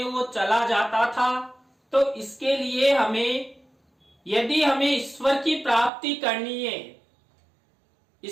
वो चला जाता था। तो इसके लिए हमें, यदि हमें ईश्वर की प्राप्ति करनी है,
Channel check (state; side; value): drops out; left; at 5.9 s